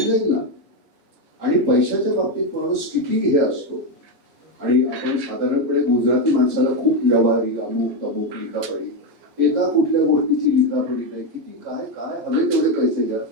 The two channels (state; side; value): late; left; 6.3 ms